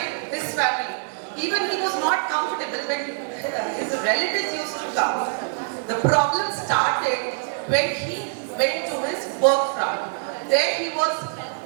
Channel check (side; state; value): left; silent; digital silence